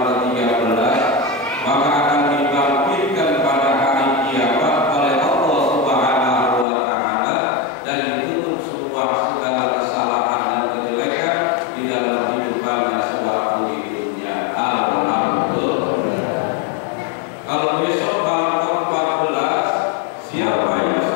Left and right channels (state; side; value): drops out; right; at 6.7 s